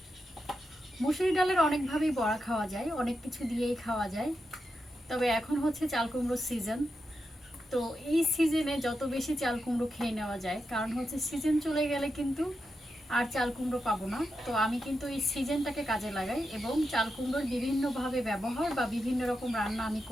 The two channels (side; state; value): both; normal; correlation 0.87